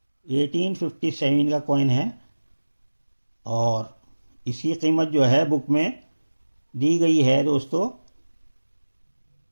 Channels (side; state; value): both; inverted; correlation -1.00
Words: 1857 का कॉइन है, और इसकी कीमत जो है बुक में दी गई है दोस्तों